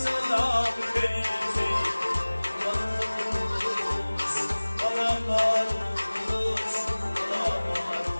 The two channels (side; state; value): both; inverted; correlation -1.00